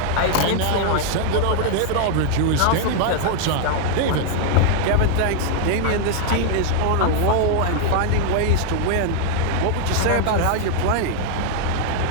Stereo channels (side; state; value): both; different; correlation 0.00